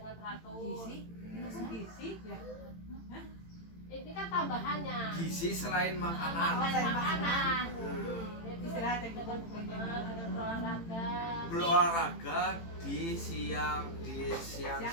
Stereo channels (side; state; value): right; late; 18 ms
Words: teratur. Gizi ya. Ini kan tambahannya. Gizi selain makanan. Makanan. Istirahat yang Dengan berolahraga. Berolahraga di siang